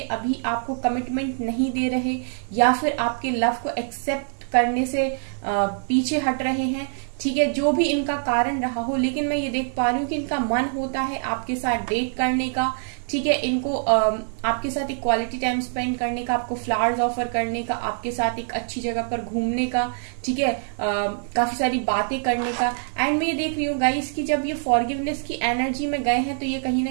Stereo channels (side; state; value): left; silent; 56 dB below the other